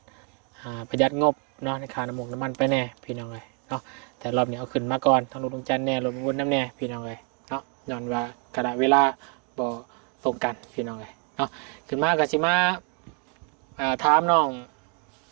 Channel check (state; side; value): quieter; left; 38.0 dB